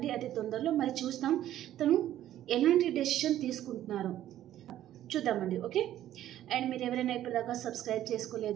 అతి తొందరలో మరి చూస్తాం తను ఎలాంటి డెసిషన్ తీసుకుంటున్నారు చూద్దామండి. ఓకే, అండ్ మీరు ఎవరైనా ఇప్పటిదాకా సబ్స్క్రైబ్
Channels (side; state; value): left; quieter; 12.5 dB